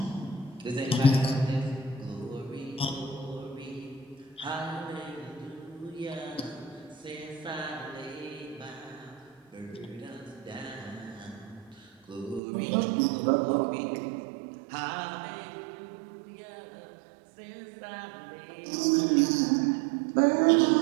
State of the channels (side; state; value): left; drops out; at 12.4 s